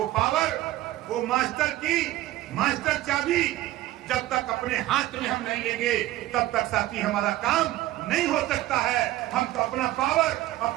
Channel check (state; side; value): quieter; left; 15.8 dB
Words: पावर, वो मास्टर की मास्टर चाबी जब तक अपने हाथ में हम नहीं लेंगे, तब तक साथी हमारा काम नहीं हो सकता है। हम तो अपना पावर,